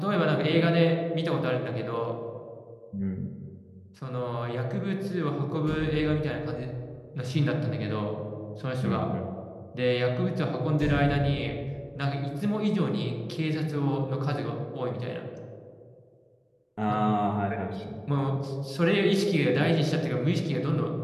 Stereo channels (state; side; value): identical; both; correlation 1.00